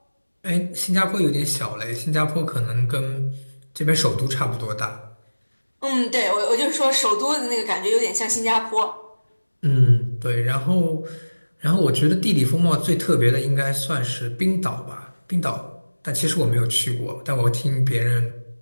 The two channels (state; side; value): inverted; both; correlation -1.00